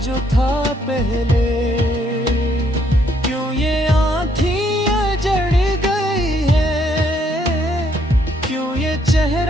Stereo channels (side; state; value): both; normal; correlation 0.70